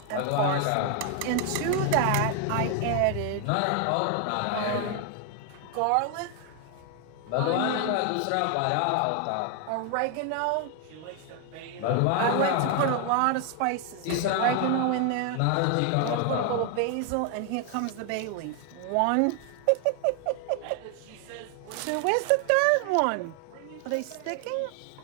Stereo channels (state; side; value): different; both; correlation 0.00